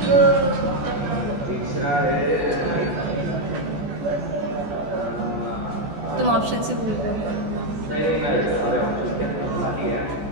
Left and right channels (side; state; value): left; late; 14 ms